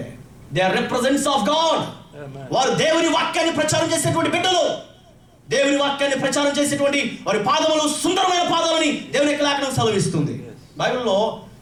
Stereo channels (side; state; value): both; identical; correlation 1.00